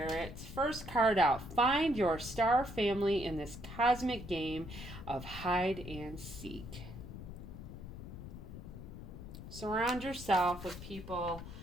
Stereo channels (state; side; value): noise; left; rumble, 11 dB below the sound